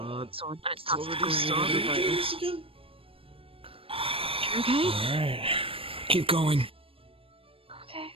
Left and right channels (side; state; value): left; late; 0.27 ms